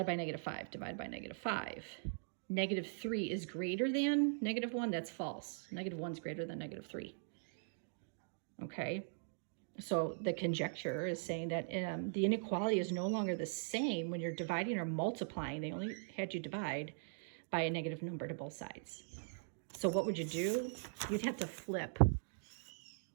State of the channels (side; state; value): left; silent; digital silence